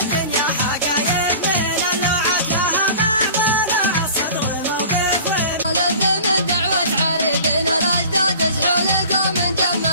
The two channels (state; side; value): inverted; both; correlation -0.42